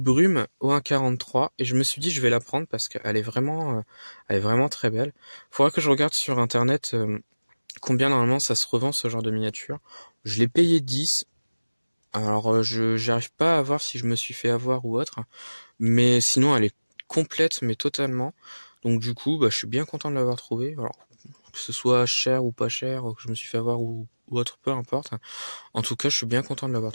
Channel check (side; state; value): both; inverted; correlation -1.00